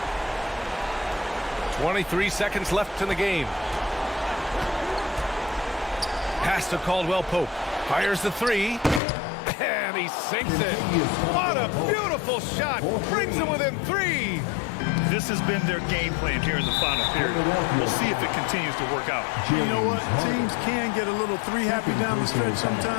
23 seconds left in the game. Pass to Caldwell Pope. Fires the 3. And he sinks it. What a beautiful shot. Brings him within 3. This has been their game plan here in the final period. We'll see if it continues to work out. You know what? Teams can get a little three happy down the stretch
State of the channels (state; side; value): drops out; right; at 9.0 s